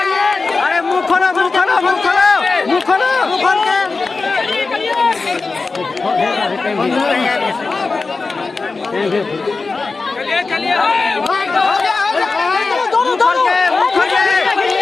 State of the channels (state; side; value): quieter; right; 4.0 dB